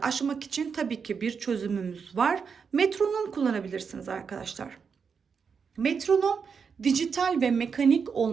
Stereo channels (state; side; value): quieter; left; 6.0 dB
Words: aşmak için tabii ki bir çözümümüz var. Metronom kullanabilirsiniz arkadaşlar. Metronom dijital ve mekanik